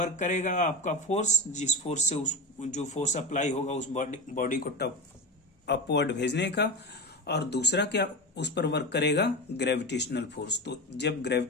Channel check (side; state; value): both; normal; correlation 0.24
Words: करेगा आपका फोर्स, जिस फोर्स से उस जो फोर्स अप्लाई होगा उस बॉडी को टॉप अपवर्ड भेजने का, और दूसरा क्या उस पर वर्क करेगा, ग्रेविटेशनल फोर्स। तो जब